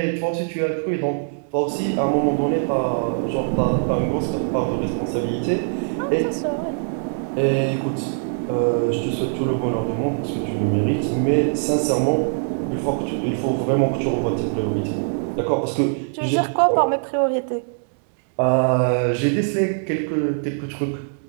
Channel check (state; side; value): silent; left; digital silence